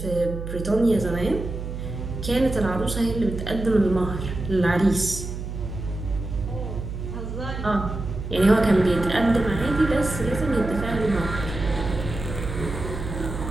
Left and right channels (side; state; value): right; noise; hum, 7 dB below the sound